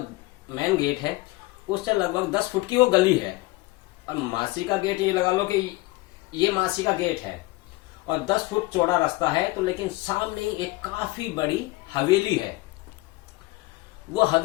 मेन गेट है, उससे लगभग 10 फुट की वो गली है। और मासी का गेट, ये लगा लो कि ये मासी का गेट है और 10 फुट चौड़ा रास्ता है। तो लेकिन सामने ही एक काफी बड़ी हवेली है। वो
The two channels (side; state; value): right; quieter; 21.0 dB